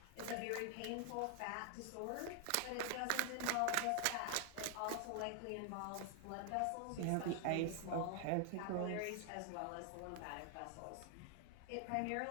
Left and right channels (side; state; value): both; different; correlation 0.00